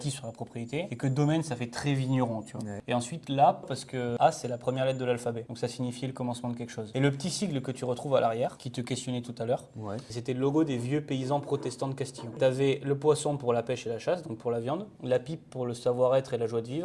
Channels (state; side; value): identical; both; correlation 1.00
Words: sur la propriété. Et que domaine, ça fait très vigneron, tu vois. Ouais. Et ensuite, là, parce que A, c'est la première lettre de l'alphabet. Donc, ça signifiait le commencement de quelque chose. Et le petit sigle que tu retrouves à l'arrière, qui te questionnait tout à l'heure, Ouais. c'était le logo des vieux paysans protestants de Castillon. Tu avais le poisson pour la pêche et la chasse, donc pour la viande, la pipe pour le savoir-être et la joie de